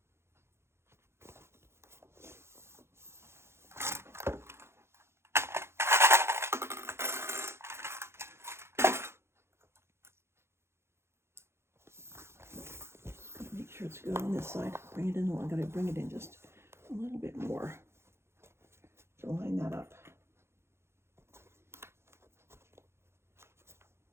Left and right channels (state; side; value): late; left; 0.12 ms